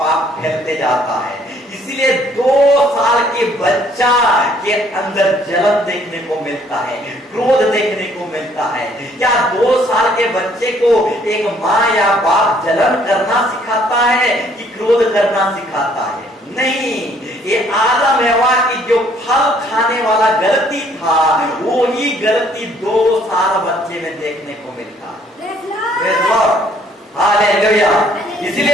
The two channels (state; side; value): normal; both; correlation 0.63